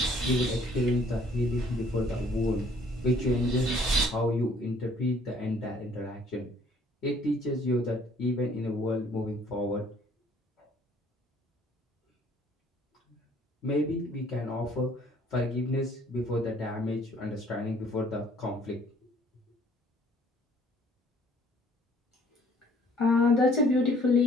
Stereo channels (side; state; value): both; normal; correlation 0.59